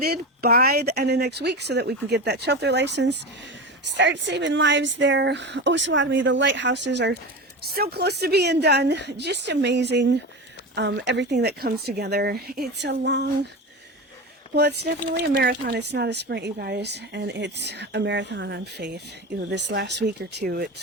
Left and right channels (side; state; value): both; normal; correlation 0.24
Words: by the end of next week so that we can get that shelter license, start saving lives there. Osawatomie, the lighthouses are so close to being done. Just amazing, everything that comes together. It's a long... Well, it's definitely a marathon. It's not a sprint, you guys, and it's a marathon on faith. You know, this last week or two, it's